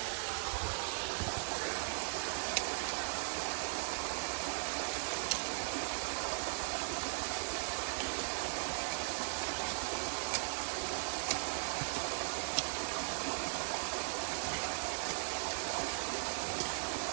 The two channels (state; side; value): silent; left; 52 dB below the other